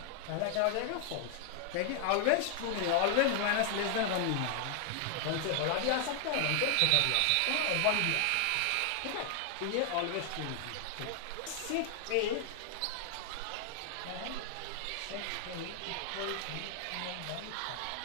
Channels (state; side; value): different; both; correlation 0.00